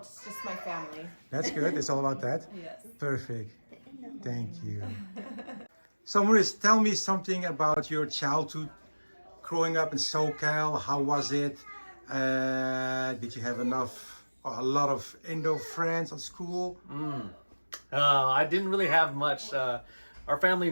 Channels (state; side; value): inverted; both; correlation -1.00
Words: it's just my family. That's good. It's all about that. Yes. Perfect. Thank you. So, Maurice, tell me something about your childhood growing up in SoCal. How was it? Did you have a lot of Indo friends at school? I didn't really have much. Our family